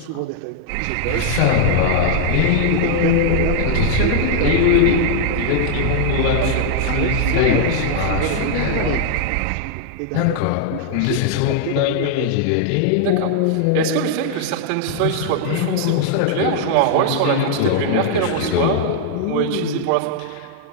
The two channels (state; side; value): different; both; correlation 0.00